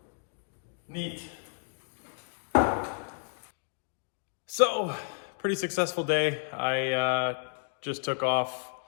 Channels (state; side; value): silent; right; 57 dB below the other